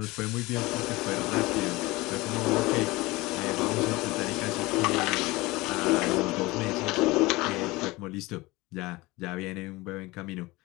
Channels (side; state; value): right; quieter; 21.5 dB